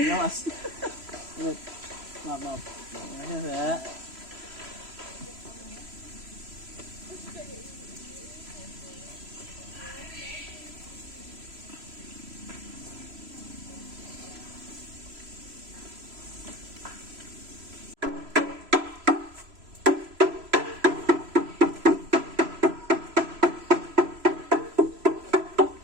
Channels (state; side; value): late; left; 3.0 ms